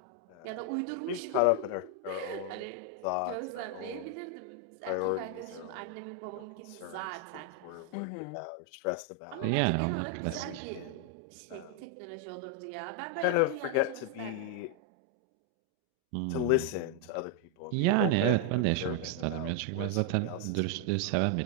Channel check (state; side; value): different; both; correlation 0.00